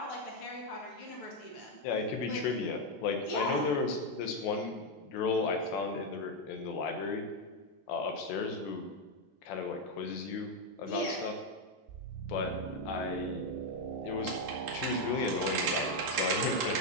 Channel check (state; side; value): normal; both; correlation 0.03